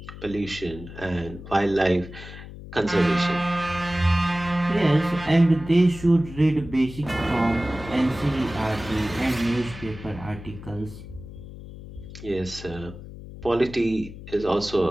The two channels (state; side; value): noise; left; hum, 14 dB below the sound